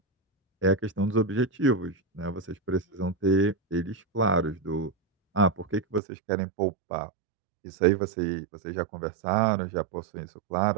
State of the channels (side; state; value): left; drops out; at 6.0 s